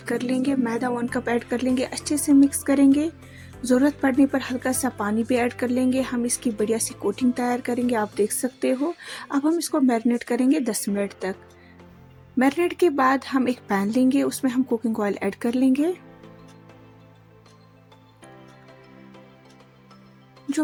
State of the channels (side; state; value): both; identical; correlation 1.00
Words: कर लेंगे, मैदा 1 कप ऐड कर लेंगे, अच्छे से मिक्स करेंगे। ज़रूरत पड़ने पर हल्का सा पानी भी ऐड कर लेंगे। हम इसकी बढ़िया सी कोटिंग तैयार करेंगे, आप देख सकते हो। अब हम इसको मैरिनेट करेंगे 10 मिनट तक। मैरिनेट के बाद हम एक पैन लेंगे, उसमें हम कुकिंग ऑयल ऐड कर लेंगे।